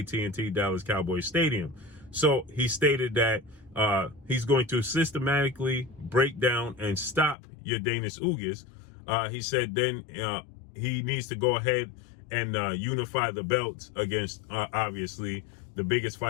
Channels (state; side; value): drops out; right; at 7.4 s